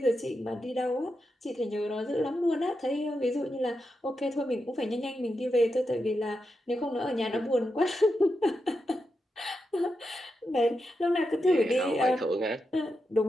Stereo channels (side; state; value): both; normal; correlation 0.87